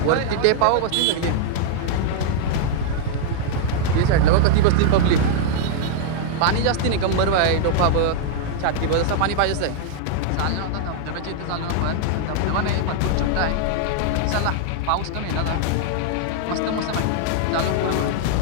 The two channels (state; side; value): different; both; correlation -0.01